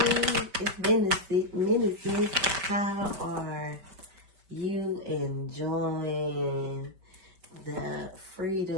it's Ministry. How are you enjoying the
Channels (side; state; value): left; late; 5.2 ms